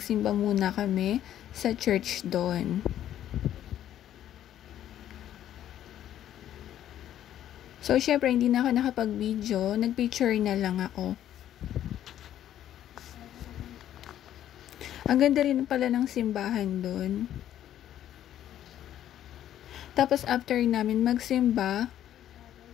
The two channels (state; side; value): quieter; right; 11.4 dB